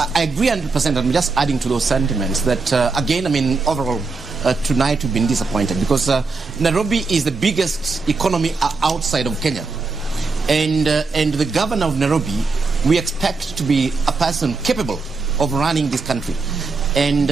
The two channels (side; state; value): left; quieter; 4.1 dB